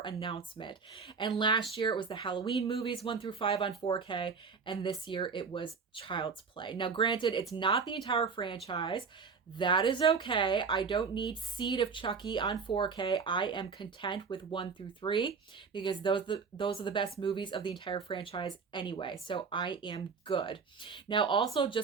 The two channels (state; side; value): quieter; left; 5.4 dB